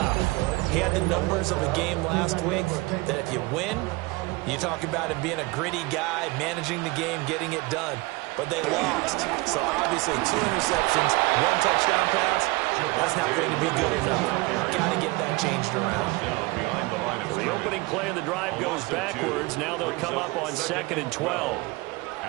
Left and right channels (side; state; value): left; quieter; 23.5 dB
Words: He had the numbers of a game last week that if you win, you talk about him being a gritty guy, managing the game, getting it done. But they lost. So obviously 2 interceptions, 1 touchdown pass, that's not going to be good enough. Got to get that changed around. The opening play of the drive goes backwards. Now they'll come up on 2nd and 12.